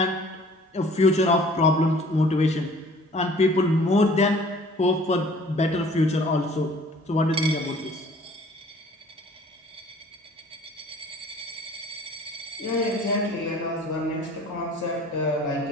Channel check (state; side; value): normal; both; correlation 0.51